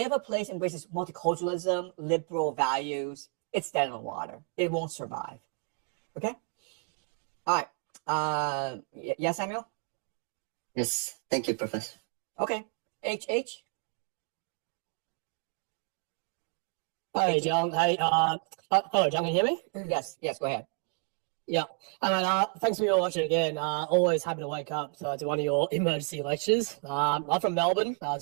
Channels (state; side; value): quieter; left; 39.6 dB